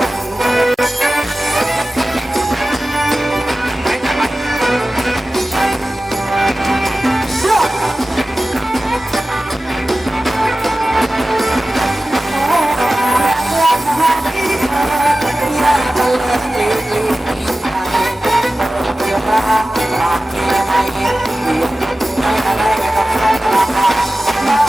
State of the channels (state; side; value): normal; both; correlation 0.96